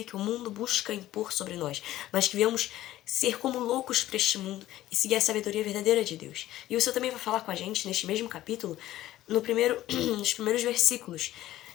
que o mundo busca impor sobre nós, mas que venhamos ser como loucos para este mundo e seguir a sabedoria verdadeira de Deus. E o Senhor também vai falar com a gente neste mesmo capítulo, nos primeiros versículos,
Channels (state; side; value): quieter; right; 14.6 dB